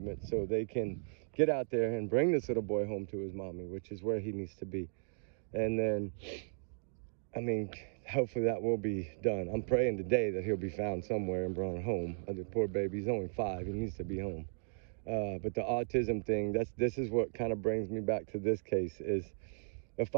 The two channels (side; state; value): left; silent; digital silence